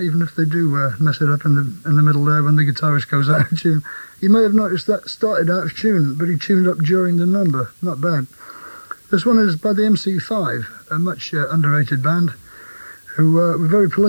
if they do mess it up in the middle there when the guitarist goes out of tune. You may have noticed that started out of tune, but he tuned up during the number. Not bad. This one is by the MC5, a much underrated band who were very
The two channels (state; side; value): inverted; both; correlation -1.00